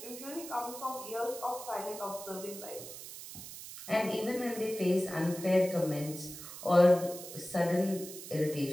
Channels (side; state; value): right; noise; hiss, 12 dB below the sound